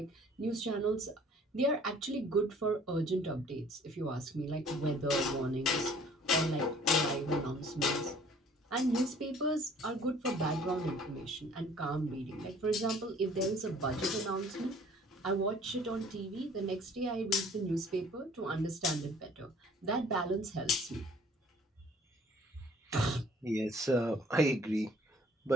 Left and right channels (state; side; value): normal; both; correlation 0.54